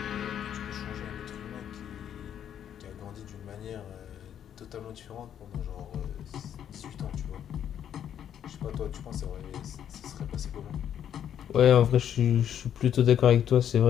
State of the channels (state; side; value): quieter; right; 9.6 dB